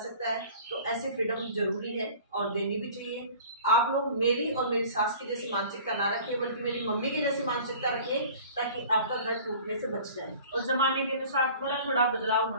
है, तो ऐसे फ्रीडम जरूरी है और देनी भी चाहिए। आप लोग मेरी और मेरी सास की जैसी मानसिकता ना रखिए, बल्कि मेरी मम्मी की जैसी मानसिकता रखिए, ताकि आपका घर टूटने से बच जाए। और जमाने के अनुसार थोड़ा थोड़ा बदलाव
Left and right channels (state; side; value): inverted; both; correlation -0.45